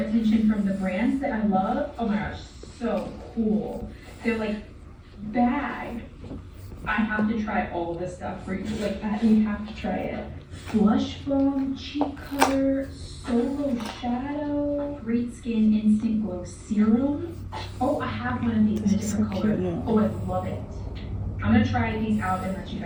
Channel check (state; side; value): identical; both; correlation 1.00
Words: from the brands that I love. Oh my gosh, so cool. They're, like, bag. I have to try all this stuff for you. Like, you have to try it. Blush foam, cheek color, solo shadow, great skin instant glow serum. Oh, I have one of these in a different color. Oh, I love it. I'm gonna try these out and let you